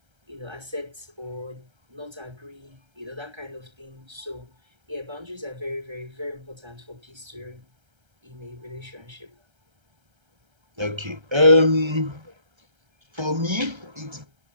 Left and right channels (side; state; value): left; late; 1.3 ms